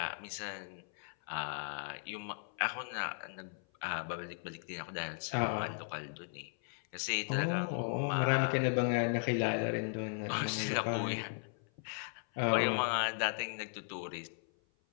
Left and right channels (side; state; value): right; silent; 53 dB below the other